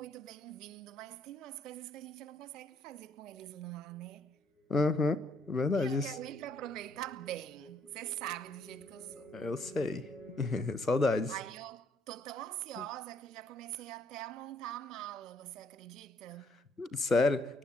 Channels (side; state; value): both; normal; correlation 0.67